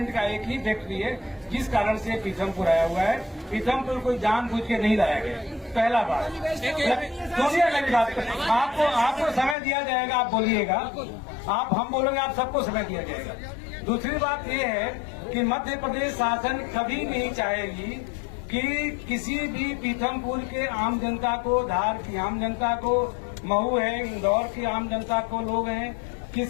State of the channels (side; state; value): right; drops out; at 9.6 s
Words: का एक ही फैक्ट्री है जिस कारण से पीथमपुर आया हुआ है। पीथमपुर कोई जानबूझ के नहीं लाया गया। पहला बात सुनिए, मेरी बात आपको समय दिया जाएगा, आप बोलिएगा, आप हम बोलेंगे, आप सबको समय दिया जाएगा। दूसरी बात ये है कि मध्य प्रदेश शासन कभी नहीं चाहेगी कि किसी भी पीथमपुर के आम जनता को, धार की आम जनता को, मऊ है, इंदौर की आम जनता को लोग हैं,